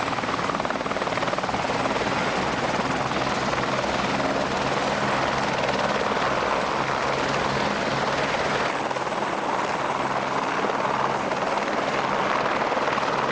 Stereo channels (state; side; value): identical; both; correlation 1.00